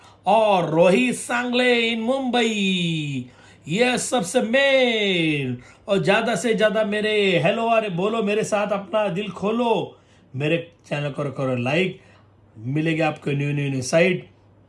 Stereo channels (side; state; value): both; identical; correlation 1.00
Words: और रोहित सांगले इन मुंबई, ये सबसे मेन. और ज़्यादा से ज़्यादा मेरे हेलो, अरे बोलो मेरे साथ, अपना दिल खोलो, मेरे चैनल को करो लाइक, मिलेगा आपको न्यू साइट.